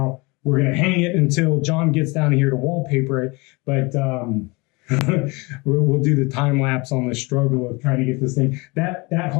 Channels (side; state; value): right; quieter; 26.3 dB